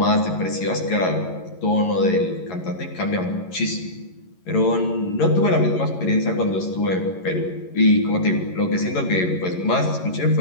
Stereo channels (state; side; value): late; right; 11 ms